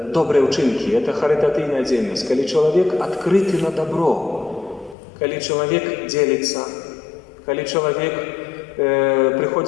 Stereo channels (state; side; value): drops out; right; at 5.0 s